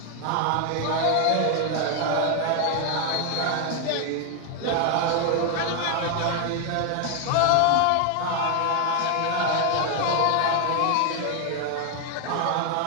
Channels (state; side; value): different; both; correlation 0.00